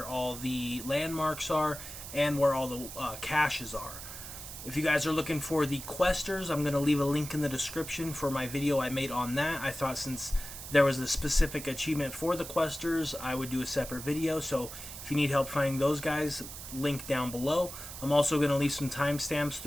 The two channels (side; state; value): right; noise; hiss, 11 dB below the sound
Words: all the landmarks are, and where all the caches are. If you guys are looking for the questers, I'm going to leave a link in the description for my video I made on that. I thought since there was a specific achievement for the questers, I would do a separate video. So if you need help finding those guys, link down below. I'm also going to leave some timestamps